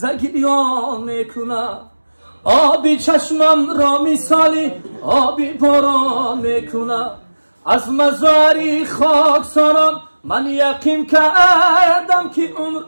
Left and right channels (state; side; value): inverted; both; correlation -1.00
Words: گریان میکنه. آبی چشمم را مثالی آبی باران میکنه. از مزاری خاکساران من یقین کردم که عمر